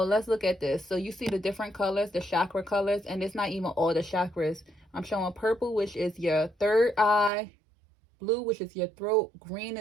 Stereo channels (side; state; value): left; drops out; at 7.3 s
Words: let's look at this. So you see the different colors, the chakra colors, and it's not even all the chakras. I'm showing purple, which is your third eye, blue, which is your throat, green